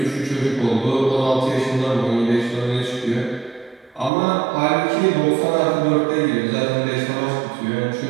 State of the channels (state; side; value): drops out; left; at 4.1 s